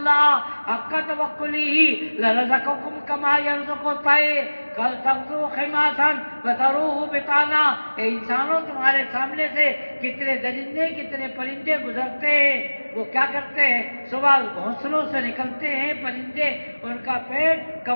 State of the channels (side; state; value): both; inverted; correlation -1.00